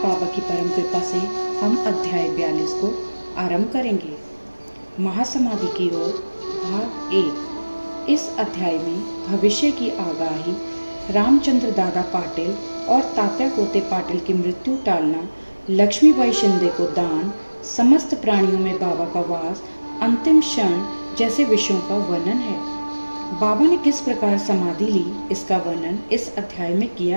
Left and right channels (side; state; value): both; inverted; correlation -1.00